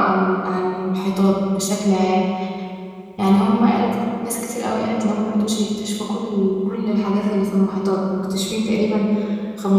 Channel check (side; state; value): both; identical; correlation 1.00